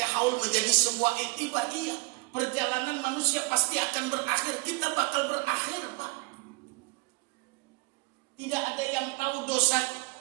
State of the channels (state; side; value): quieter; left; 26.2 dB